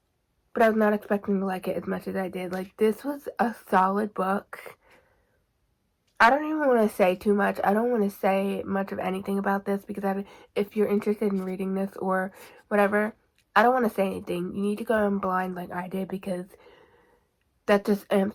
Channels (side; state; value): both; identical; correlation 1.00